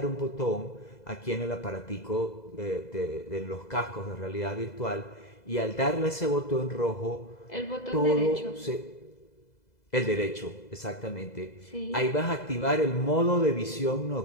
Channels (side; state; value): right; late; 2.0 ms